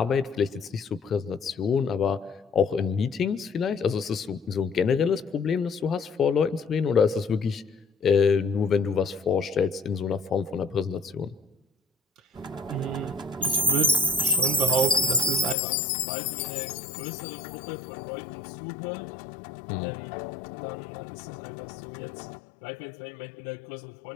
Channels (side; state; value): right; drops out; at 15.6 s